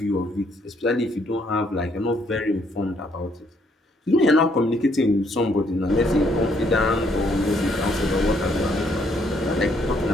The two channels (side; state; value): both; normal; correlation 0.69